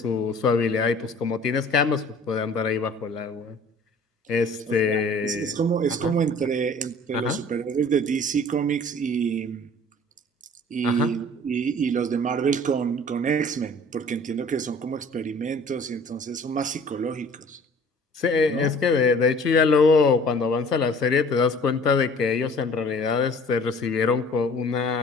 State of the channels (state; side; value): normal; both; correlation 0.49